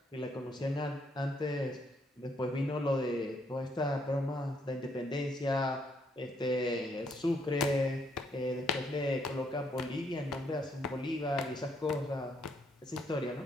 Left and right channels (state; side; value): normal; both; correlation 0.72